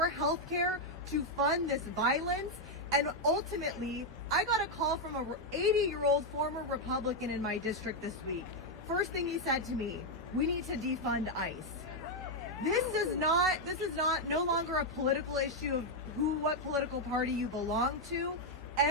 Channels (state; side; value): normal; both; correlation 0.01